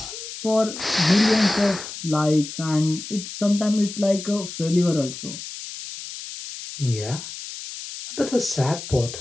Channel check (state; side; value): noise; left; hiss, 10 dB below the sound